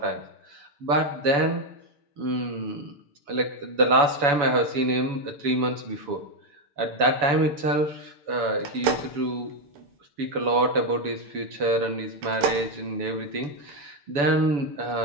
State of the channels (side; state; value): left; late; 7.0 ms